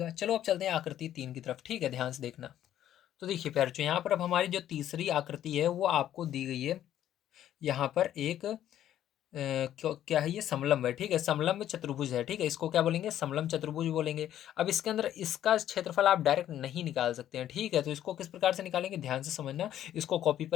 चलो अब चलते हैं आकृति 3 की तरफ, ठीक है, ध्यान से देखना। तो देखिए प्यारे, यहाँ पर अब हमारी जो तीसरी आकृति है वो आपको दी गई है। यहाँ पर एक क्या है, ये समलंब है, ठीक है, समलंब चतुर्भुज है, ठीक है, इसको क्या बोलेंगे, समलंब चतुर्भुज बोलेंगे। अब इसके अंदर इसका क्षेत्रफल आप डायरेक्ट नहीं निकाल सकते हैं, ठीक है, तो इसको किस प्रकार से निकालेंगे ध्यान से समझना। इसको कॉपी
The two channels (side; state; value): right; quieter; 11.6 dB